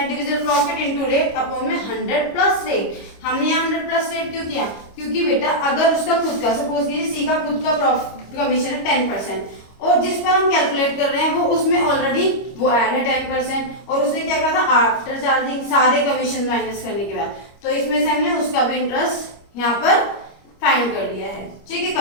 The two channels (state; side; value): late; right; 25 ms